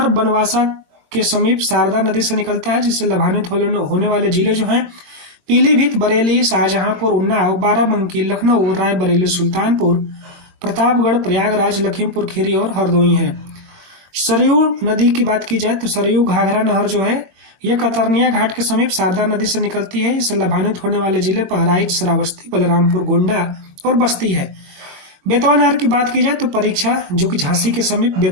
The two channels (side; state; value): left; late; 22 ms